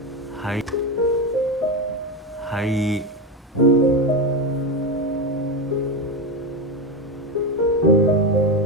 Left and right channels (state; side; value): normal; both; correlation 0.14